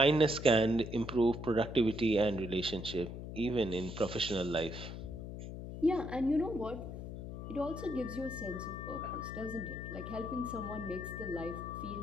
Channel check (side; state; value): left; noise; hum, 8 dB below the sound